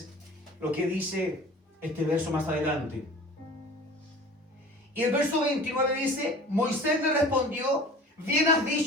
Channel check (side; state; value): both; normal; correlation 0.42